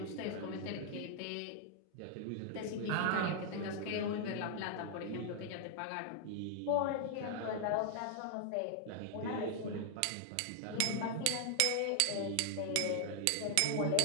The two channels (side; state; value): both; different; correlation 0.00